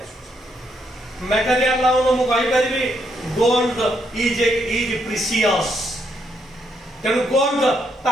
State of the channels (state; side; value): normal; both; correlation 0.75